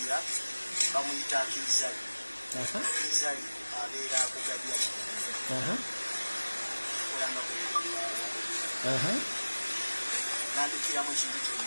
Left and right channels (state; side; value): inverted; both; correlation -1.00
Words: bamuyita Kirizali Kirizali abeera kugabya olanga nandikiramu ekintu